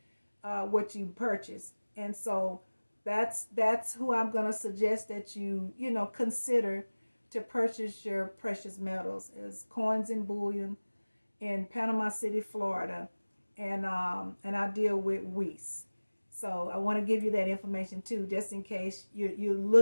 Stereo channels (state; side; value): inverted; both; correlation -1.00